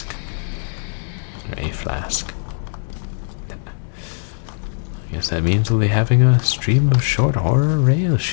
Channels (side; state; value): right; silent; digital silence